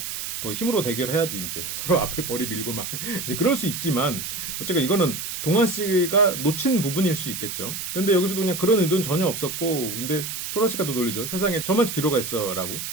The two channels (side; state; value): right; noise; hiss, 5 dB below the sound